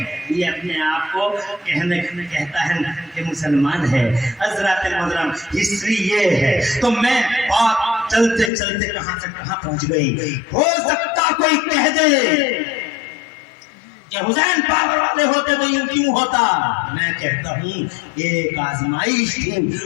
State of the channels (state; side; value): drops out; right; at 8.5 s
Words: یہ اپنے آپ کو کہتا ہے کہ مسلمان ہے۔ حضرات محترم ہسٹری یہ ہے، تو میں بات چلتے چلتے کہاں سے کہاں پہنچ گئی۔ ہو سکتا کوئی کہہ دے کہ حسین پاور والے ہوتے تو یوں کیوں ہوتا؟ میں کہتا ہوں ایک آزمائش تھی،